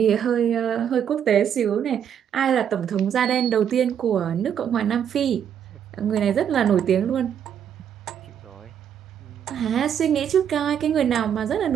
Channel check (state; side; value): quieter; left; 8.8 dB